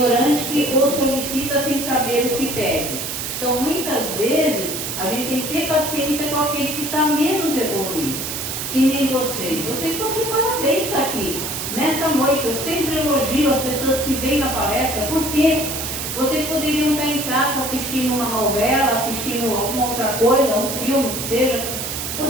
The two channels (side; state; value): right; noise; hiss, 4 dB below the sound